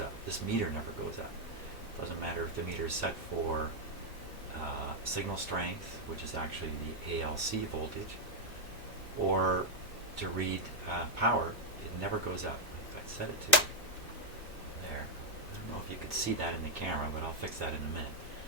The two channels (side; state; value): both; normal; correlation -0.01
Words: This meter never goes up. Doesn't matter if the meter is set for signal strength, which is actually the ALC voltage, or to read power. It never goes up. If I set it to there, I don't know if you could see that in the camera, but I'll fix that in a minute.